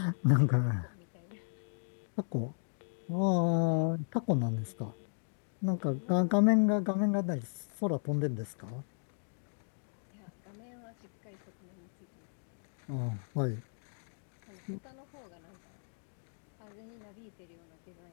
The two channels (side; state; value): right; silent; digital silence